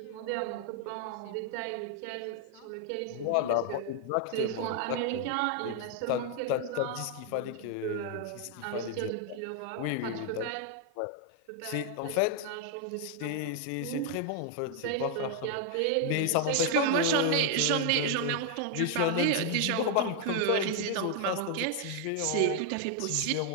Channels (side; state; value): both; different; correlation 0.00